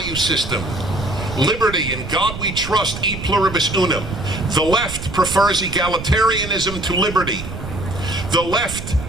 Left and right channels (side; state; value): right; noise; rumble, 9 dB below the sound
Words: system. Liberty, in God we trust, e pluribus unum. The left prefers egalitarianism to liberty. The left